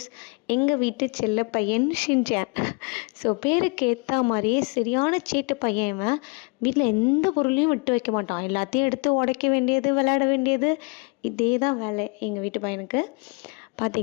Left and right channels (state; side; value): quieter; right; 31.5 dB